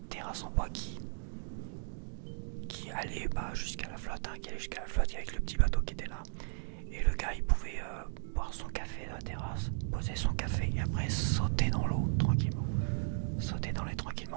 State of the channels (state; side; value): silent; left; digital silence